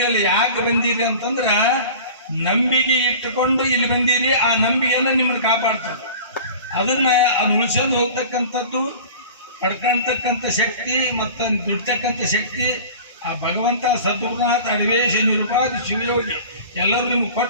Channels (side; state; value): both; inverted; correlation -0.40